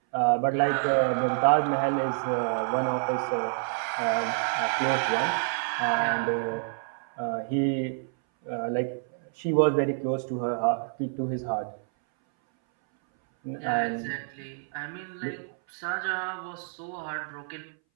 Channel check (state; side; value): silent; left; 59 dB below the other